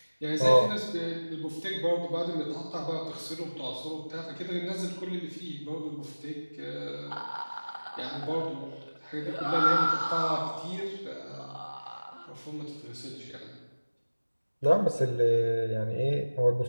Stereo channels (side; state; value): both; inverted; correlation -1.00